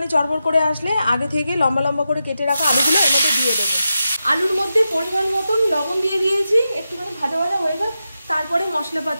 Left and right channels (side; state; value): both; inverted; correlation -0.89